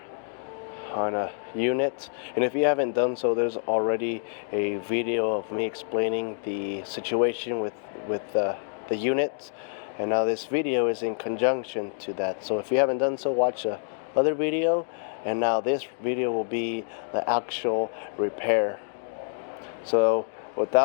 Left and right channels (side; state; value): right; silent; digital silence